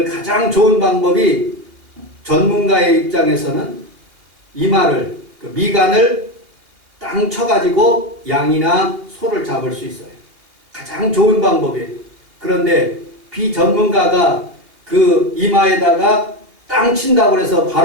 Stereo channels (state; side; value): late; left; 2.8 ms